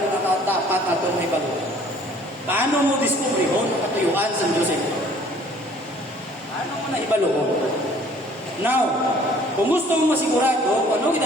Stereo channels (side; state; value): both; normal; correlation 0.55